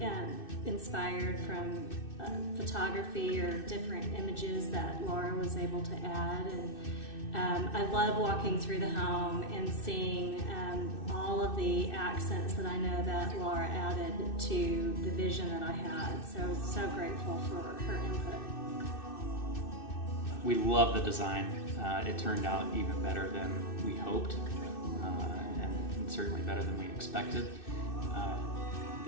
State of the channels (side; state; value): right; late; 2.6 ms